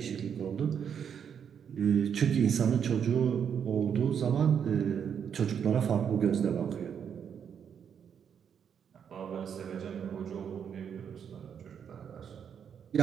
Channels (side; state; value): left; quieter; 7.8 dB